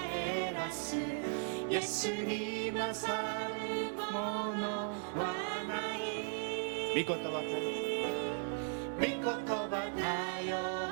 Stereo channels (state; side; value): silent; left; 53 dB below the other